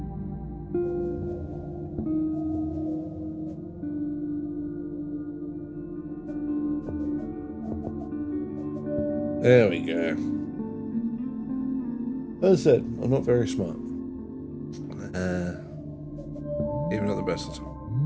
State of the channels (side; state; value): both; identical; correlation 1.00